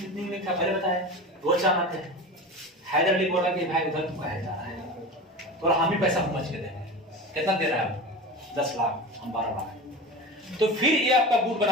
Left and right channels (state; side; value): normal; both; correlation 0.30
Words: था, पहले बताया रोज जाना थे। हैदर अली बोला कि भाई उधर तुम कहे जा रहा है, तो हम ही पैसा समझ के देंगे। कितना दे रहा है? 10 लाख, हम 12 लाख। तो फिर ये आपका गुट